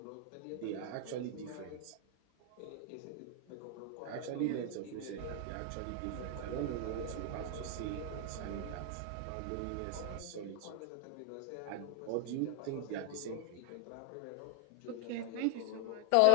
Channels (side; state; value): both; different; correlation 0.00